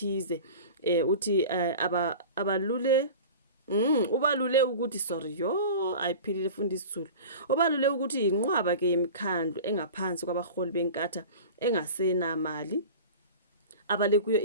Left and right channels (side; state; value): both; inverted; correlation -0.36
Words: uthi abalule ubalule ukuthi sorry ayiphilile fundi isizulu ubalule ukuthi inqwaba ke yemikhandlo engaphansi kwabaholi beNkatha engasenamali abale kuyo